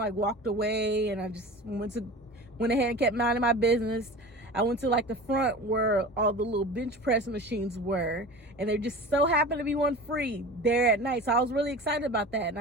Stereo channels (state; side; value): normal; both; correlation 0.35